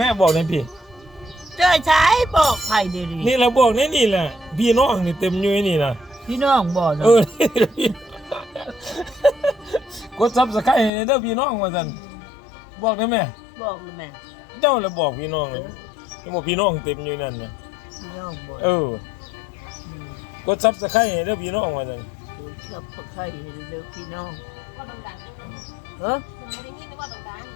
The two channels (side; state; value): right; drops out; at 10.9 s